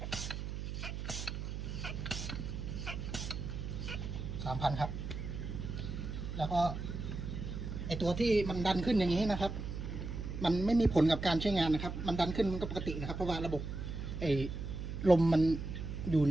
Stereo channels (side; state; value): right; noise; hum, 6 dB below the sound